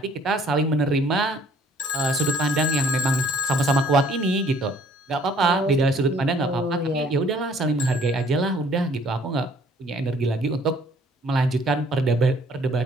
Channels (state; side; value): normal; both; correlation 0.58